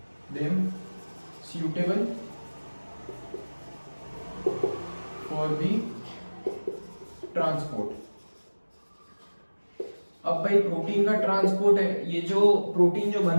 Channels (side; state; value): both; inverted; correlation -1.00